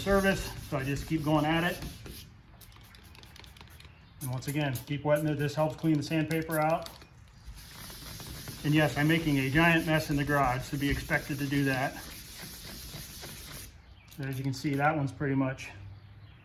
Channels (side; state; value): both; identical; correlation 1.00